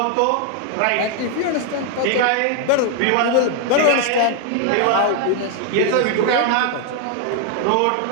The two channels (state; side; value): different; both; correlation 0.01